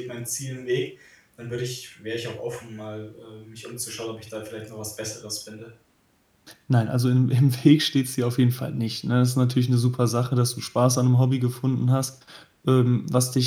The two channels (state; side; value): identical; both; correlation 1.00